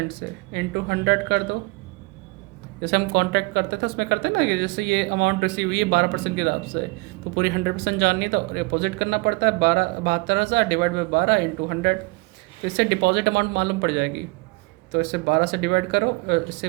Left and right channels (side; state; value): left; quieter; 25.5 dB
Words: से, इंटू 100 कर दो। जैसे हम कॉन्ट्रैक्ट करते थे उसमें करते ना, कि जैसे ये अमाउंट रिसीव हुई है 12% के हिसाब से, तो पूरी 100% जाननी है तो डिपॉजिट करना पड़ता है। 72,000 डिवाइड बाई 12 इंटू 100, तो इससे डिपॉजिट अमाउंट मालूम पड़ जाएगी। तो इससे 12 से डिवाइड करो, इससे